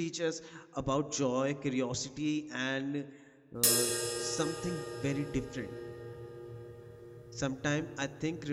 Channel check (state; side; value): identical; both; correlation 1.00